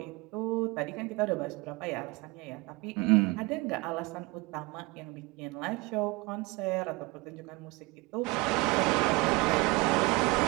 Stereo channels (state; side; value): quieter; left; 24.6 dB